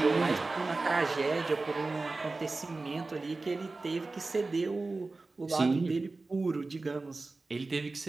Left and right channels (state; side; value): quieter; left; 3.5 dB